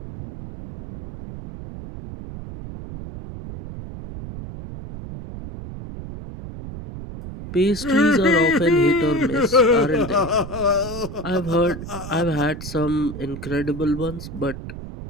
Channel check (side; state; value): right; noise; rumble, 11 dB below the sound